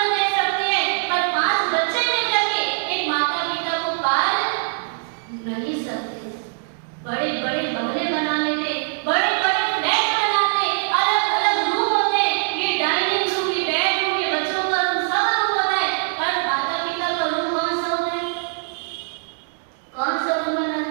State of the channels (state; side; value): silent; left; digital silence